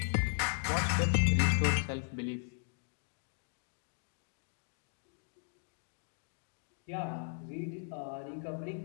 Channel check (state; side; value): silent; right; digital silence